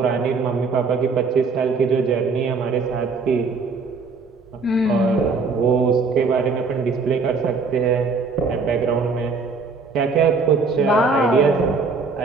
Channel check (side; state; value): left; quieter; 4.4 dB